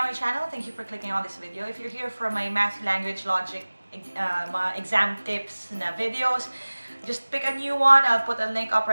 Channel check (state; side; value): inverted; both; correlation -1.00